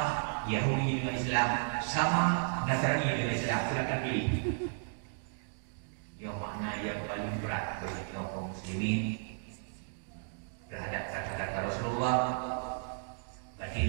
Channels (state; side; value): silent; left; digital silence